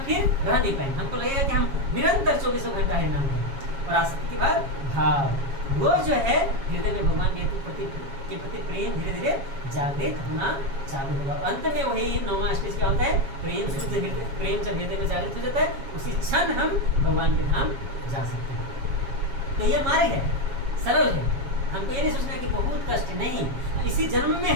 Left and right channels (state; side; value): late; left; 7.3 ms